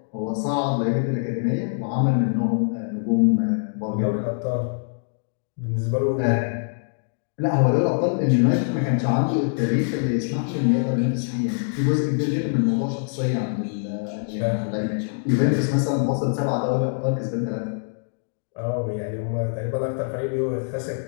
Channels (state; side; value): silent; right; digital silence